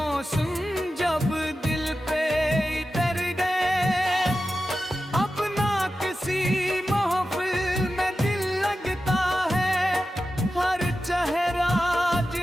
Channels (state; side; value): normal; both; correlation 0.92